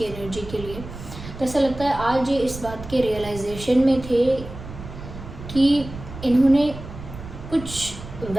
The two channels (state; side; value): noise; right; rumble, 12 dB below the sound